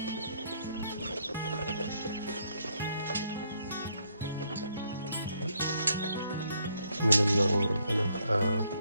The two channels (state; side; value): inverted; both; correlation -0.72